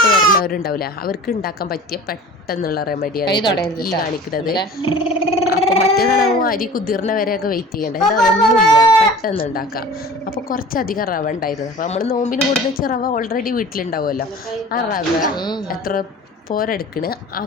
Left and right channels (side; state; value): both; normal; correlation 0.41